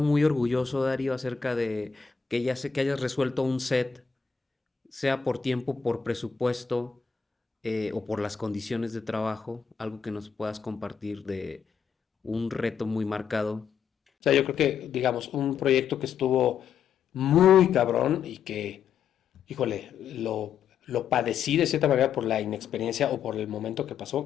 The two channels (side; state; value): right; quieter; 6.8 dB